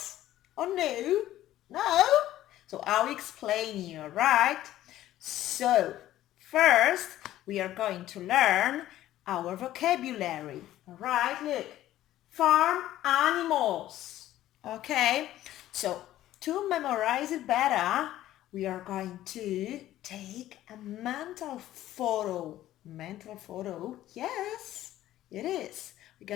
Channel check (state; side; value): quieter; right; 13.8 dB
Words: or no? No? So I'll explain you, right? So first we are going to learn our vocabulary. Alright, look. Farm animals. Okay, so to memorize it better, we are going to take a mental photo. Mental photo, yes, it is. We're